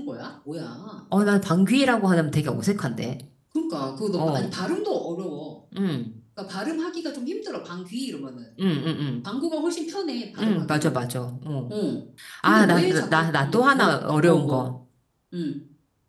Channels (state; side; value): identical; both; correlation 1.00